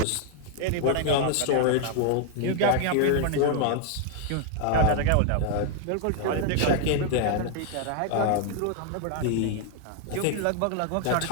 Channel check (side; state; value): both; different; correlation 0.00